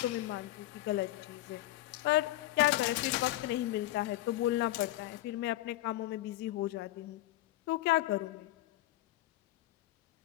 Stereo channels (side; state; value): right; quieter; 16.1 dB